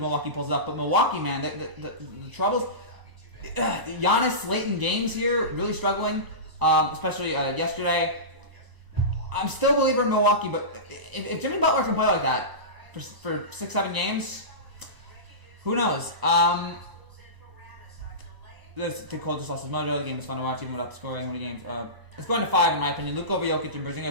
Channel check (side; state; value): left; late; 1.0 ms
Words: pulls it up. But Milwaukee, man, the troubles. Giannis late in games here, really struggling, especially yesterday. I'm still a believer in Milwaukee, but if Jimmy Butler can play like that for 6-7 games, who knows? The cold just lost his mojo. The game was fun to watch even without the scoring. How many games? It's going to 5 in my opinion. Luke over Jokic and